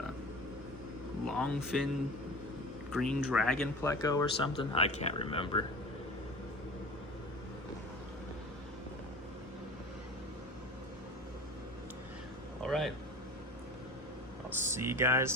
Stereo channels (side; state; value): both; normal; correlation 0.35